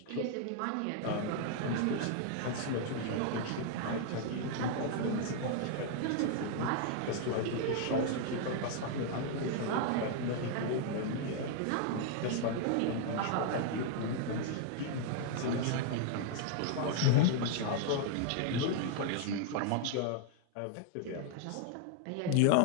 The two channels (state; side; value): different; both; correlation 0.00